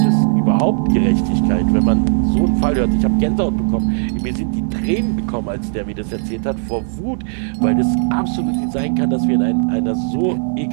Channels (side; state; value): left; silent; 60 dB below the other